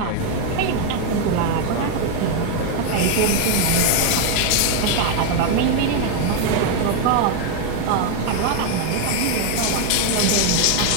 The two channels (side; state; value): both; different; correlation 0.01